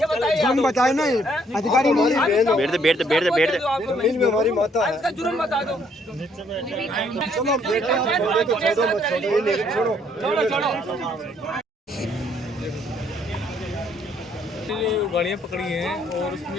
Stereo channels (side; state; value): both; normal; correlation 0.67